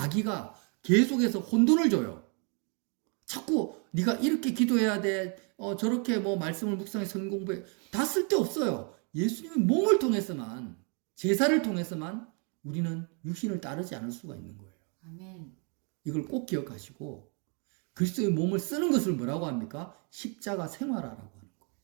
계속해서 혼돈을 줘요. 자꾸 네가 이렇게 기도해야 돼. 저렇게 말씀을 묵상해 성경 공부해. 다 쓸데없어요. 예수님의 몸을 통해서만, 제사를 통해서만 우리는 육신을 따르지 않을 수가 있는 거예요. 아멘. 이걸 꼭 기억하시고 그리스도의 몸을 쓰는 것을 뭐라고 합니까? 십자가 생활화라고 하는 거예요.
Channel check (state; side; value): quieter; left; 37.1 dB